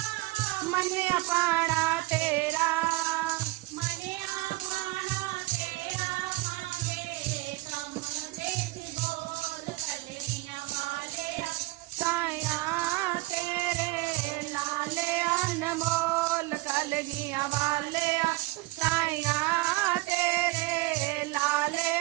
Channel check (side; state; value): left; quieter; 20.6 dB